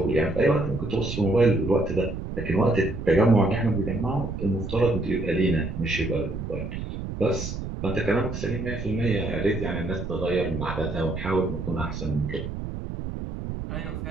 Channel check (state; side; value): noise; right; rumble, 6 dB below the sound